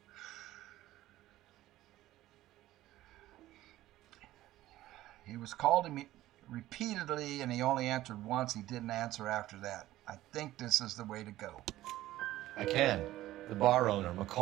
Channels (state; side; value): quieter; left; 15.3 dB